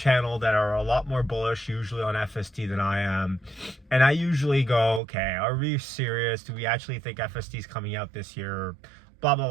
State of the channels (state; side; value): drops out; left; at 5.0 s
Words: that are a lot more bullish usually on FSD than I am. And I usually go, okay, are we serious? Do we actually think FSD is coming out this year? Blah, blah,